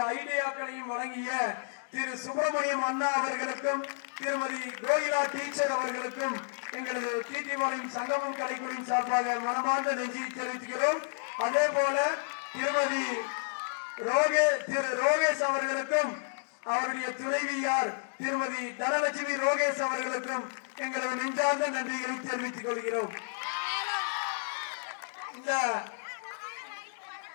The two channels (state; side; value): silent; right; digital silence